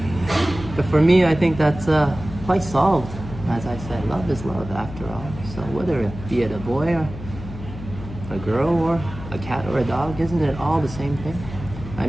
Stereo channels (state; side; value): noise; left; hum, 12 dB below the sound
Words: But for me, I think that's quite solved. As I said, love is love after all. So whether it be a boy or a girl or a cat or a dog, isn't it all the same thing? I